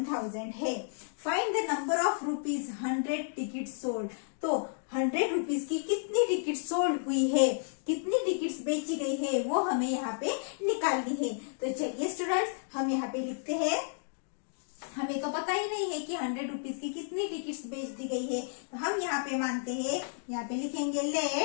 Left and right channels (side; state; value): right; silent; digital silence